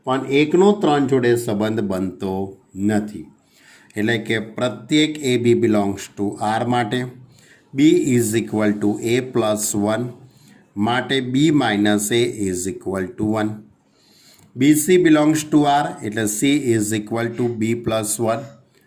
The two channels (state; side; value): identical; both; correlation 1.00